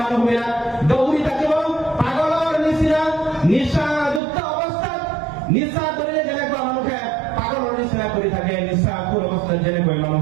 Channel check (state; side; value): drops out; left; at 4.2 s